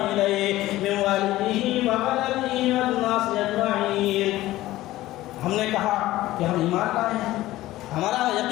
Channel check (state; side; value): quieter; right; 16.2 dB